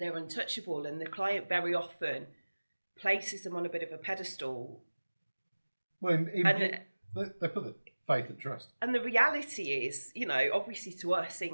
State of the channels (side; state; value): both; inverted; correlation -1.00